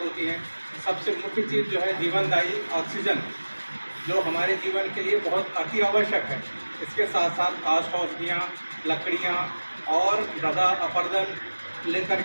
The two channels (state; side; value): inverted; both; correlation -1.00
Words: होती हैं। सबसे मुख्य चीज़ जो है जीवनदायी ऑक्सीजन, जो हमारे जीवन के लिए बहुत अति आवश्यक है। इसके साथ साथ औषधियाँ, लकड़ियाँ और मृदा अपरदन लेकर